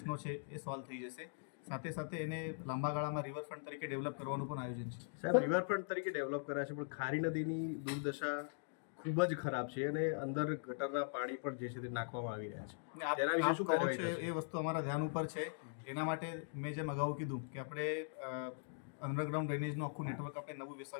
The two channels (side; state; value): right; silent; digital silence